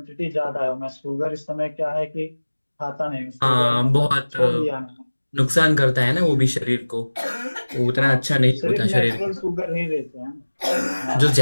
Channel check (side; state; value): both; inverted; correlation -1.00